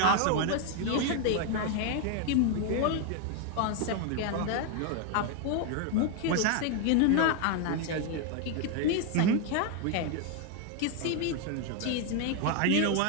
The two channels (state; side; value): different; both; correlation 0.01